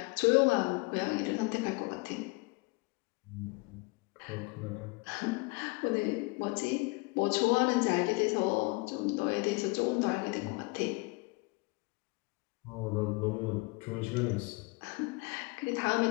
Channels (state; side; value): quieter; right; 26.5 dB